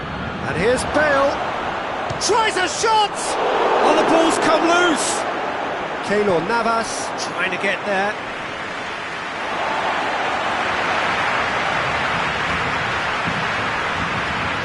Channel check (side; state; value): both; identical; correlation 1.00